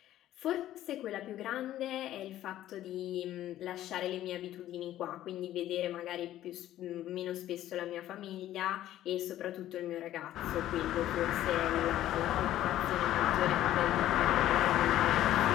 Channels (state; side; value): quieter; right; 13.2 dB